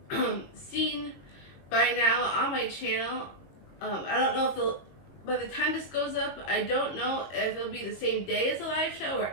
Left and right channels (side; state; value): right; late; 22 ms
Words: seen by now on my channel, I don't know if by the time this goes up, I don't know if it'll be the same day as the live show or